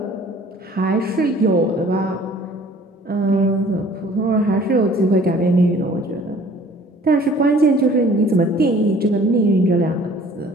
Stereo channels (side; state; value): both; normal; correlation 0.52